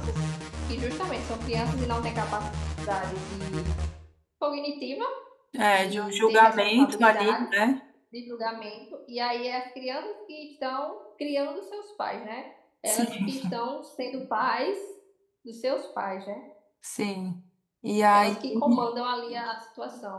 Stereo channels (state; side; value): identical; both; correlation 1.00